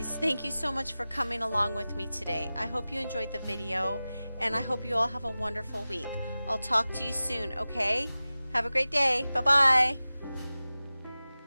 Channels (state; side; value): inverted; both; correlation -0.97